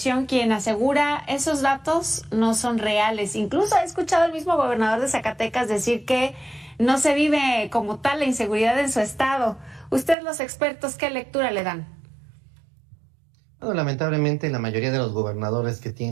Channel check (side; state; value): left; drops out; at 10.2 s